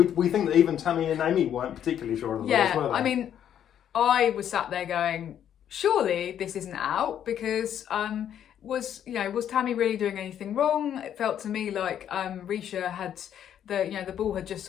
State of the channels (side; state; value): right; quieter; 9.8 dB